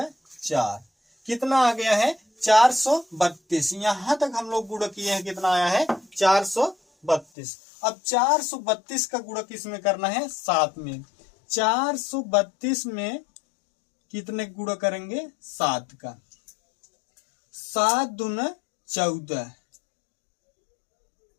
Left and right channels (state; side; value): drops out; right; at 7.2 s